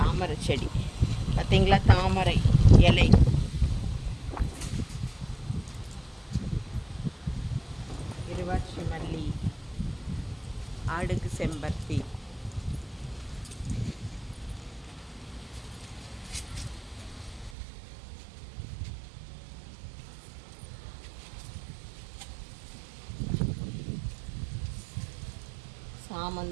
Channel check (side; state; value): left; drops out; at 17.6 s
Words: செடி. பார்த்தீங்களா, தாமரை இலை. இருவாட்சி மல்லி, அடுக்கு செம்பருத்தி.